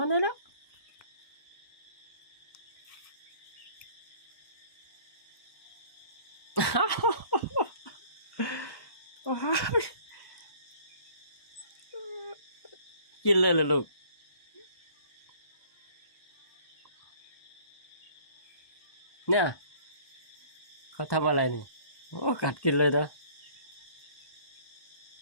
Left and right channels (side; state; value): right; late; 1.1 ms